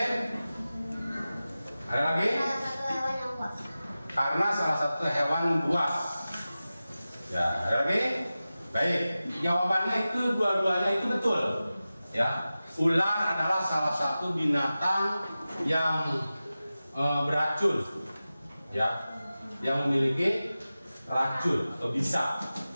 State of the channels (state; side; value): inverted; both; correlation -0.95